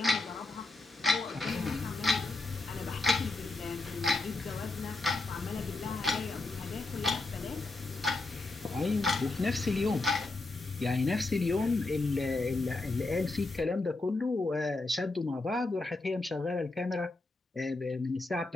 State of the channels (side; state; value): right; quieter; 3.2 dB